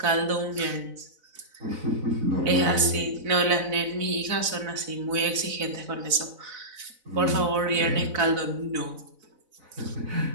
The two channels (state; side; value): late; left; 4.0 ms